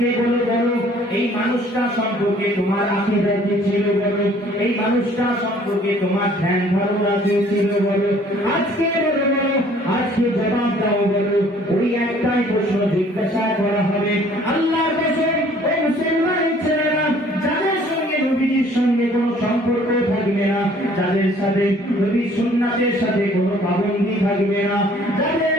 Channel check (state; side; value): normal; both; correlation 0.56